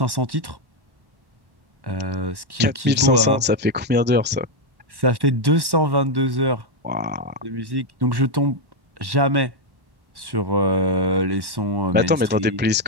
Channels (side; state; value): left; late; 1.1 ms